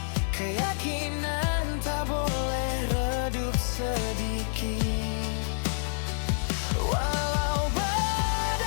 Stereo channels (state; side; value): silent; right; digital silence